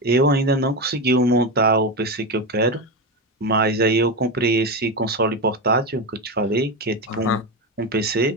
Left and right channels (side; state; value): both; normal; correlation 0.15